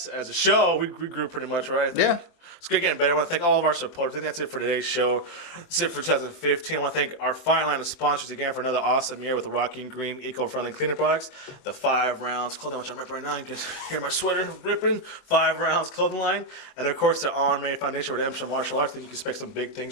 as a show, we grew pretty much, right? I think. Yeah. It's getting better. I want to thank all of our supporters. I think that's it for today's show. That's it for 2015. I want to thank our fine line of sponsors again for another awesome year with the Rocky and Green eco-friendly cleaning products, the 5 Rounds clothing, which I'm ripping right now. You can hear my sweater ripping. 5 Rounds clothing line, and of course the RMMA Foundation Redemption Martial Arts. I think you can expect some big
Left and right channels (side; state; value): right; late; 23 ms